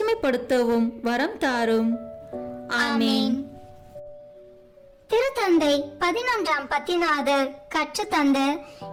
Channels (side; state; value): both; identical; correlation 1.00